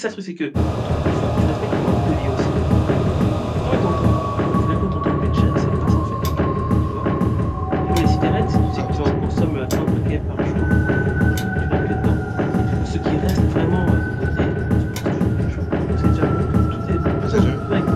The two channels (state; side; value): identical; both; correlation 1.00